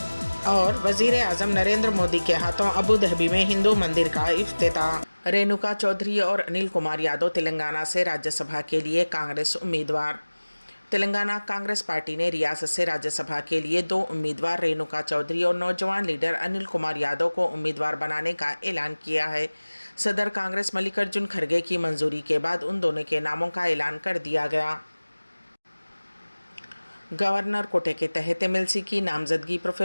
और वजीर आजम नरेंद्र मोदी के हाथों अबू धाबी में हिंदू मंदिर का इफ्तिताह। रेणुका चौधरी और अनिल कुमार यादव तेलंगाना से राज्यसभा के लिए कांग्रेस उम्मीदवार। तेलंगाना कांग्रेस पार्टी ने रियासत से राज्यसभा के लिए 2 उम्मीदवार रेणुका चौधरी और नौजवान लीडर अनिल कुमार यादव को उम्मीदवार बनाने का ऐलान किया है। सदर कांग्रेस मल्लिकार्जुन खड़गे की मंजूरी के बाद उन दोनों के नामों का ऐलान कर दिया गया। गवर्नर कोटे के तहत एमएलसी की नामजदगी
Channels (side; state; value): both; inverted; correlation -1.00